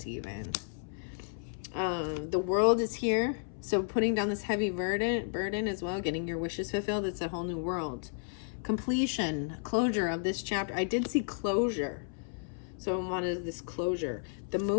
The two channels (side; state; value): right; silent; 56 dB below the other